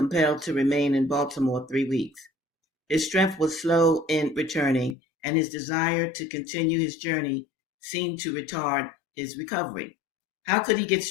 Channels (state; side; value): drops out; right; at 5.0 s